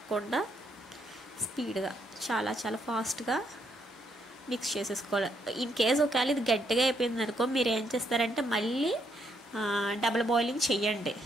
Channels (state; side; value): normal; both; correlation 0.74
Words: స్పీడ్గా చాలా చాలా ఫాస్ట్గా మిక్స్ చేసేసుకోవాలి. ఇన్ కేస్ ఒకవేళ ఇది గట్టిగా అయిపోయింది అనుకో, మీరు ఏం చేస్తారంటే మళ్ళీ డబుల్ బాయిలింగ్ చెయ్యండి.